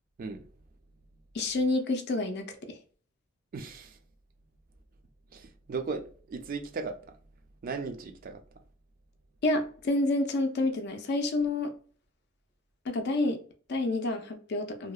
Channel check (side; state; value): both; normal; correlation 0.45